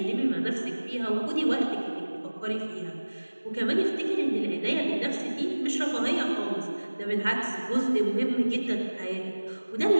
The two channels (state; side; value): inverted; both; correlation -1.00